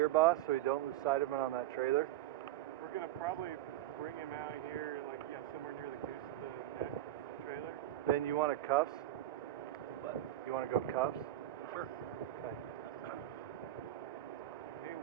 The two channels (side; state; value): left; quieter; 13.8 dB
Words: boss, so you don't lose sight of him on that trailer? We're gonna probably bring him out here, like, yeah, somewhere near the goose of the neck trailer. Then you want a cuffs? What? You want to go cuffs? Sure. Okay. Hey,